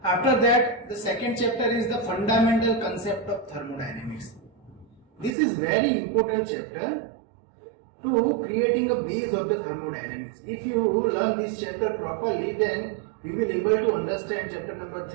After that, the second chapter is the fundamental concept of thermodynamics. This is very important chapter to creating a base of the thermodynamics. If you learn this chapter properly, then you will able to understand chapter number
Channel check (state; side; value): drops out; left; at 5.4 s